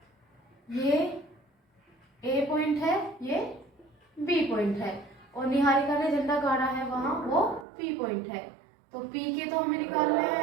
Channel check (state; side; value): drops out; left; at 7.7 s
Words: ये ए पॉइंट है ये बी पॉइंट है और निहारिका ने झंडा गाड़ा है वहां वो पी पॉइंट है। तो पी के तो हमें निकालना